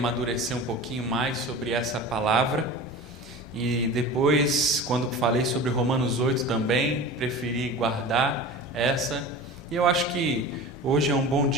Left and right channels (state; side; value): normal; both; correlation 0.34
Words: um pouquinho mais sobre essa palavra. E depois, quando falei sobre Romanos 8 também, preferi guardar essa. E eu acho que hoje é um bom